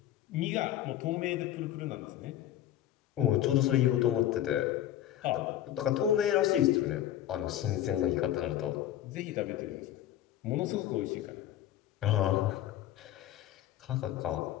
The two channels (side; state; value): right; quieter; 12.3 dB